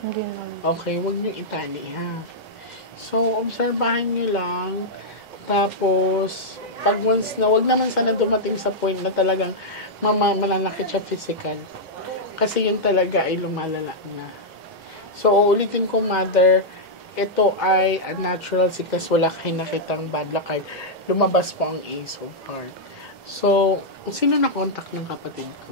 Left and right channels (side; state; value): both; normal; correlation -0.07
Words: naman. Okay, huwag niyo itali ha. So, obserbahan niyo lang. Tapos, pag once na, wag naman sana dumating sa point na talagang mananakit siya physical. Kasi yun talaga ay lumalala na. So, uulitin ko, mother, ito ay a natural sickness. Wala kayo nakitang bad luck card. Lumabas po ang Ace of Hearts. So, sino na contact ng kapatid